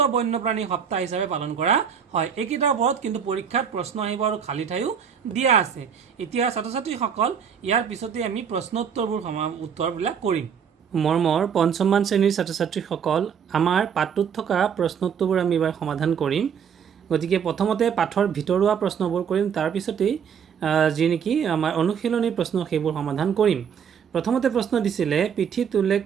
বন্যপ্ৰাণী সপ্তাহ হিচাপে পালন কৰা হয়। এইকেইটাৰ ওপৰত কিন্তু পৰীক্ষাত প্ৰশ্ন আহিব আৰু খালী ঠাইও দিয়া আছে। এতিয়া ছাত্ৰ ছাত্ৰীসকল ইয়াৰ পিছতে আমি উত্তৰবিলাক কৰিম। মৰমৰ 5ম শ্ৰেণীৰ ছাত্ৰ ছাত্ৰীসকল, আমাৰ পাঠটোত থকা প্ৰশ্নোত্তৰবোৰ আমি এইবাৰ সমাধান কৰিম। গতিকে প্ৰথমতে পাঠৰ ভিতৰুৱা প্ৰশ্নবোৰ কৰিম, তাৰপিছতেই যি নেকি আমাৰ অনুশীলনী প্ৰশ্ন সেইবোৰ সমাধান কৰিম। প্ৰথমতে প্ৰশ্ন দিছিলে পিঠিত উল্লেখ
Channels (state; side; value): quieter; left; 7.4 dB